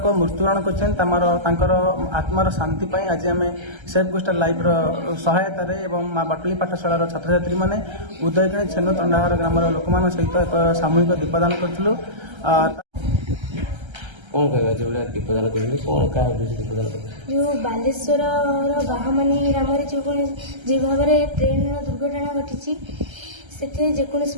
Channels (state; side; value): late; left; 1.3 ms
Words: मृत्युवरण कर आत्मार शांति आज आम सेफ कोस्टाल लाइफ सहायतार माँ बाटली पाठशाला छात्र छात्री मैंने उदयगिणी छेनु तंडाहार ग्राम लोक सहित एक सामूहिक दीपदान करूँ। कौन कहवा जो दीपदान करेंगे कौन क्या उद्देश्य दीपदान कर जो बालेश्वर बाहामानी ग्राम जो भाव में ट्रेन दुर्घटना घटी से जेकोसी